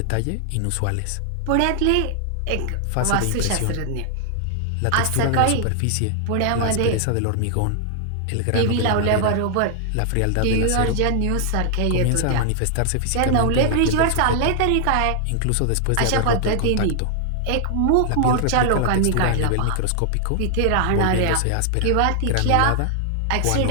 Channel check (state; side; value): different; both; correlation 0.00